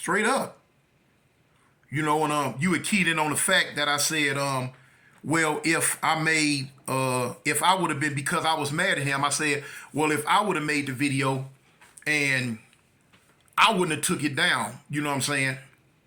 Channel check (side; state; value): both; identical; correlation 1.00